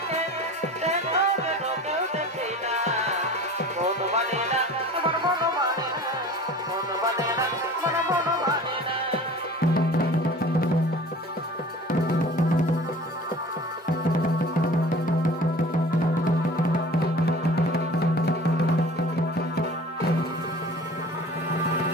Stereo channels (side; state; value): both; normal; correlation 0.41